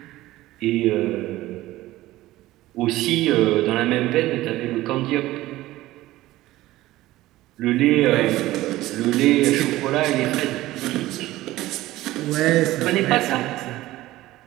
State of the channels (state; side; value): quieter; left; 16.7 dB